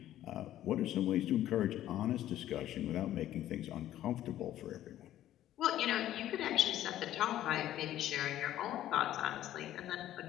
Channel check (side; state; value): right; quieter; 12.9 dB